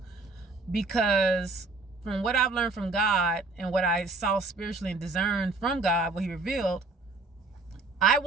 because from what I've learned from God and what I saw spiritually and discerned from God, what he revealed, I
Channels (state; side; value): quieter; left; 3.6 dB